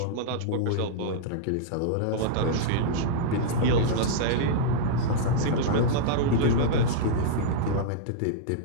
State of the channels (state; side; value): different; both; correlation -0.02